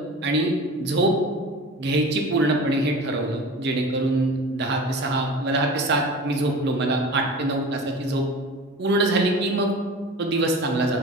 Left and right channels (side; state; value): both; normal; correlation 0.37